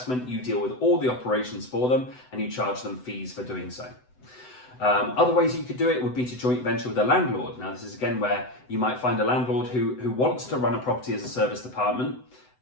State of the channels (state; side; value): late; right; 7.9 ms